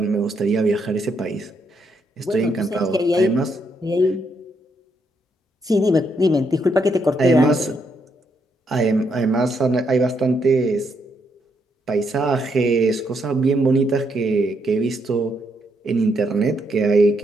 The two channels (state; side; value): normal; both; correlation 0.76